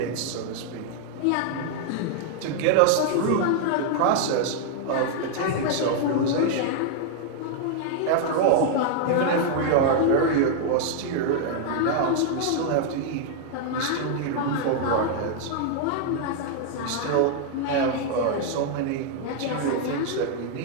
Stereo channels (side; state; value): both; different; correlation 0.00